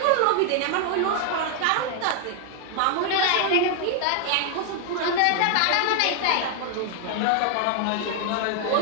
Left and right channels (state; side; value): different; both; correlation 0.00